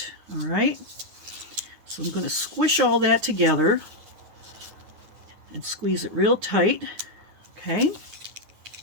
All right, so I'm going to squish all that together and squeeze it real tight. Okay.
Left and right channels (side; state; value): left; late; 9.7 ms